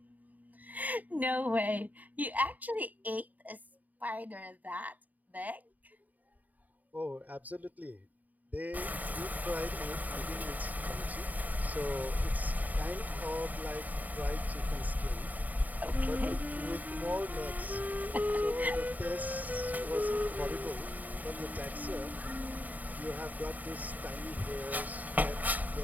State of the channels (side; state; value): left; late; 0.079 ms